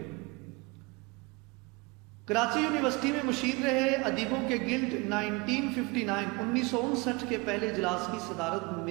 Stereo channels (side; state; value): left; quieter; 26.6 dB